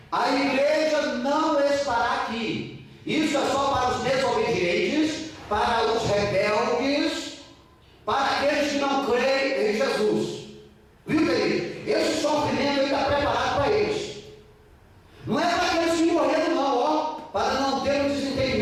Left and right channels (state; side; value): identical; both; correlation 1.00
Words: a igreja não estará aqui. Isso é só para os desobedientes, para os rebeldes, para aqueles que não creem em Jesus. Viu, querido? Esse sofrimento está preparado para eles. Não é para aqueles que morreram não, ó, para não ter um